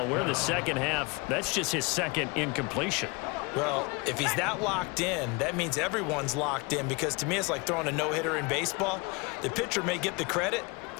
we're in the second half. That's just his 2nd incompletion. Well, if he's that locked in, that means everyone's locked in, because to me it's like throwing a no-hitter in baseball. The pitcher may get the credit,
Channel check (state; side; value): quieter; right; 28.0 dB